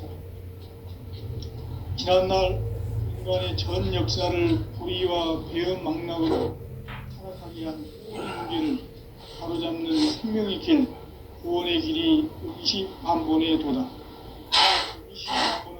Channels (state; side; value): identical; both; correlation 1.00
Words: 지난날 인간의 전 역사를 불의와 배은 망락으로 타락하게 한 모든 문제를 바로잡는 생명의 길, 구원의 길이 임시반본의 도다.